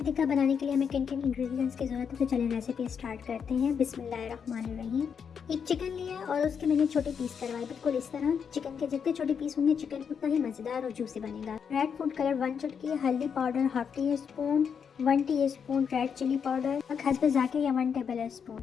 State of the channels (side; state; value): right; quieter; 6.9 dB